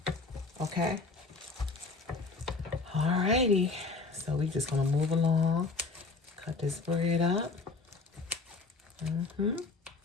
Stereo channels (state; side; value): quieter; right; 4.0 dB